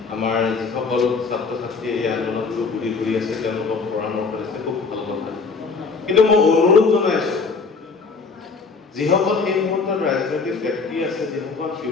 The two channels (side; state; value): right; quieter; 4.6 dB